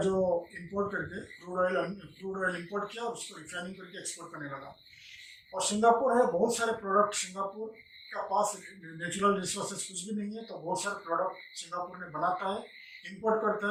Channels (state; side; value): identical; both; correlation 1.00